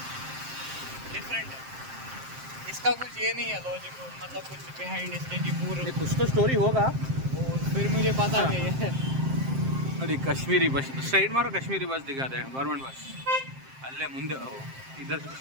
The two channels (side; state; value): left; late; 7.6 ms